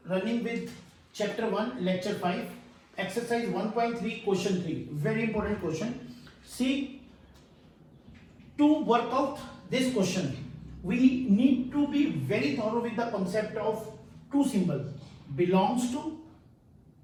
running with chapter 1 lecture 5 exercise 1.3 question 3. Very important question. See, to work out this question we need to be very thorough with the concept of two symbols, belongs to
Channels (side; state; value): both; identical; correlation 1.00